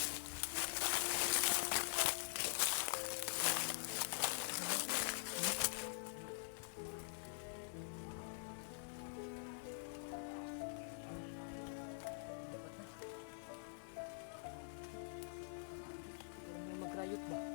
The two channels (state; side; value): silent; right; digital silence